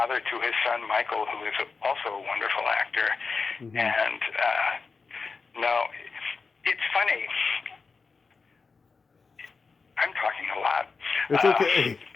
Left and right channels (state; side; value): quieter; right; 4.7 dB